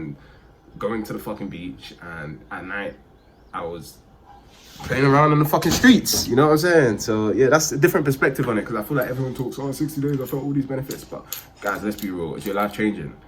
going to the fucking beach, and at night I was playing around in the fucking streets, you know what I'm saying? So yeah, that's a different perspective on it, because I feel like everyone talks, oh, 60 days, I felt all these benefits, but guys, let's be real, is your life changing?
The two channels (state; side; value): identical; both; correlation 1.00